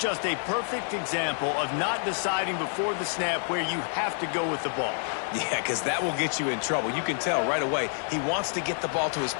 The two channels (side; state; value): right; silent; 58 dB below the other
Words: a perfect example of not deciding before the snap where you have to go with the ball. Yeah, because that will get you in trouble. You can tell right away he wants to get the ball to his